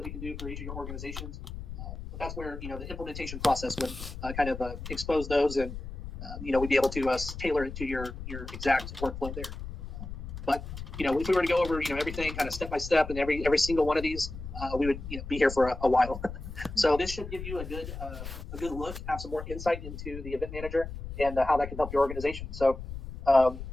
we can do for each of your organizations. But that's where the implementation process would kind of expose those, and we'd be able to tailor it to your exact workflow there. But if we were to go over everything kind of step by step, and every single one of these, we would be here for a while. So this should give you a good look, have some more insight into the event manager and how that can help your organization. So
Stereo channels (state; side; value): noise; left; rumble, 9 dB below the sound